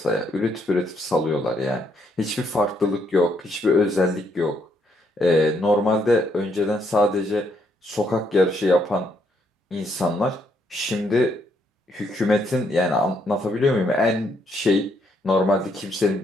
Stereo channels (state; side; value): normal; both; correlation 0.73